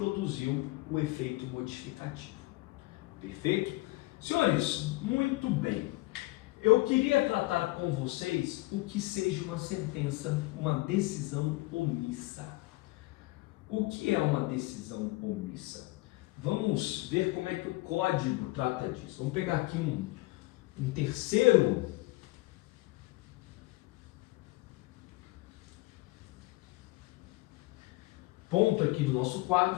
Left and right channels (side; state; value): right; quieter; 21.3 dB